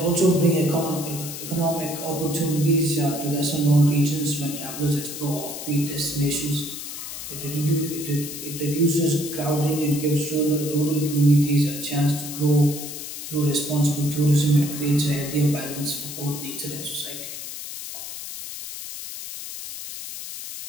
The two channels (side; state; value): left; noise; hiss, 9 dB below the sound